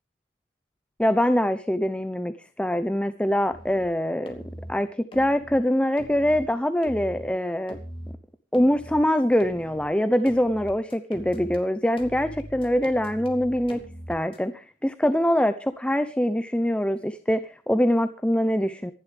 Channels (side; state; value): both; normal; correlation 0.94